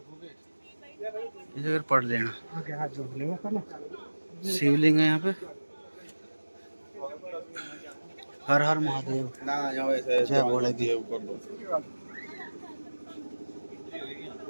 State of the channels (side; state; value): both; inverted; correlation -1.00